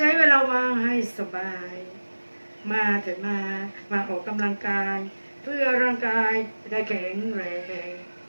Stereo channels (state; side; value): inverted; both; correlation -1.00